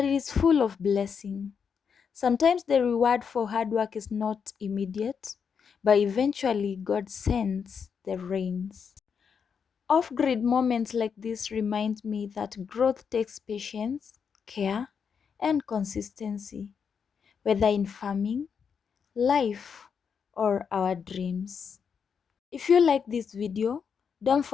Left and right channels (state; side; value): quieter; right; 6.6 dB